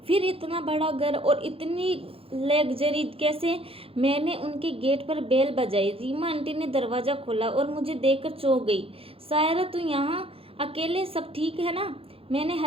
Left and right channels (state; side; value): late; left; 0.27 ms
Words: फिर इतना बड़ा घर और इतनी लग्जरी कैसे? मैंने उनके गेट पर बेल बजाई। रीमा आंटी ने दरवाज़ा खोला और मुझे देखकर चौंक गई। सायरा, तू यहाँ अकेले? सब ठीक है ना? मैंने